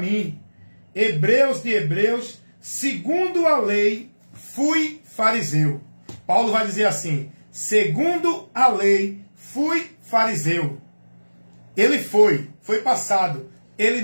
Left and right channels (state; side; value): inverted; both; correlation -1.00